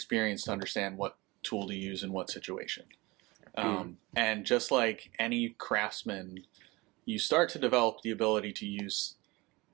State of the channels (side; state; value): left; quieter; 22.9 dB